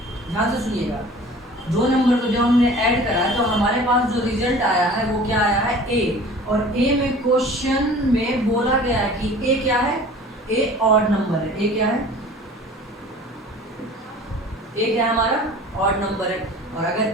ध्यान से सुनिएगा, दो नंबर को जब हमने ऐड करा है तो हमारे पास जो रिजल्ट आया है वो क्या आया है, a। और a में क्वेश्चन में बोला गया है कि a क्या है, a ऑड नंबर है। a क्या है, a क्या है हमारा ऑड नंबर है। और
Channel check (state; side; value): normal; both; correlation 0.44